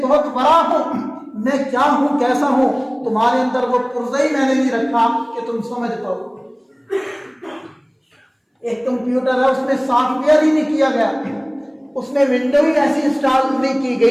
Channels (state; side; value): identical; both; correlation 1.00